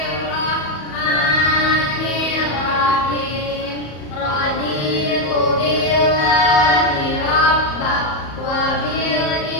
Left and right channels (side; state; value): right; late; 34 ms